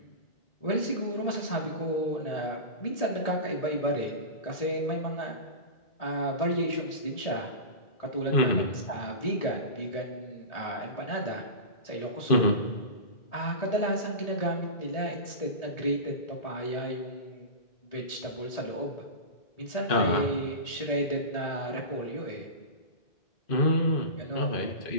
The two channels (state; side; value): late; right; 1.7 ms